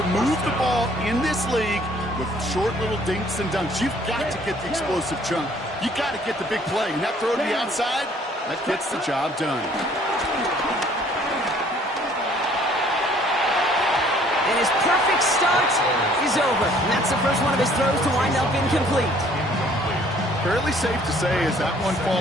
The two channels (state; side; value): normal; both; correlation 0.59